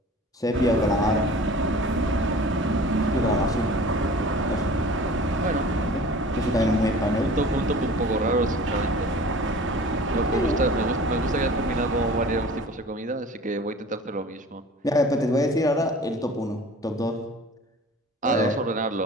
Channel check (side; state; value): both; normal; correlation 0.43